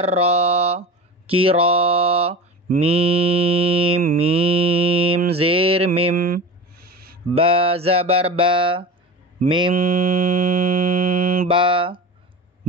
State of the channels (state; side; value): normal; both; correlation 0.29